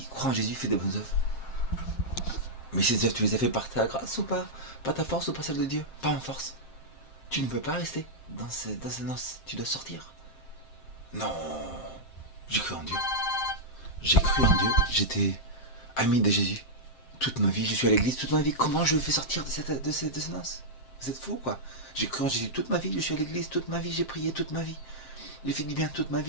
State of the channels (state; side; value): late; right; 7.5 ms